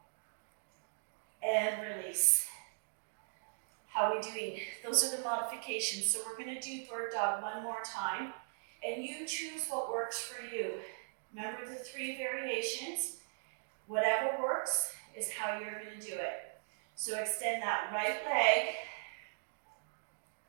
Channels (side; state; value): left; silent; digital silence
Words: And release. How are we doing? Those are the modifications. So we're going to do bird dog one more time. And you choose what works for you. Remember the 3 variations. Whatever works is how you're going to do it. So extend that right leg.